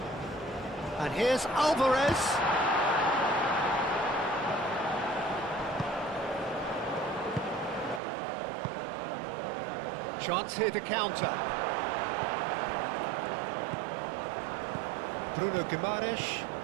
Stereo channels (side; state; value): left; drops out; at 8.0 s